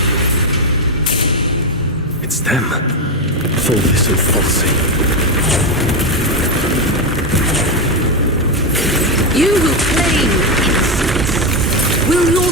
It's them. Fulvis and Falsey. You who claim innocence, will your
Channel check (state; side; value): normal; both; correlation 0.08